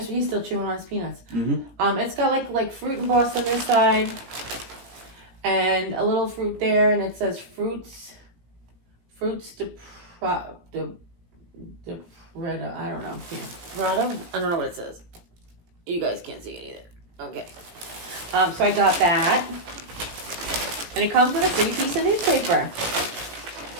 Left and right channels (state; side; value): late; left; 17 ms